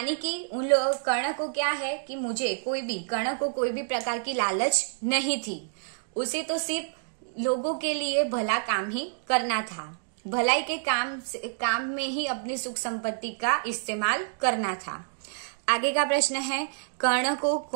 कि उन लोग, कर्ण को क्या है कि कर्ण को कोई भी प्रकार की लालच नहीं थी। उसे तो सिर्फ लोगों के लिए भला काम ही करना था, भलाई के काम में ही अपनी सुख संपत्ति का इस्तेमाल करना था। आगे का प्रश्न है, कर्ण को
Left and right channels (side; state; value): left; silent; digital silence